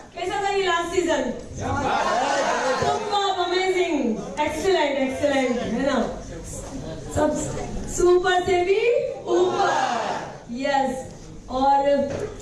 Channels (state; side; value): identical; both; correlation 1.00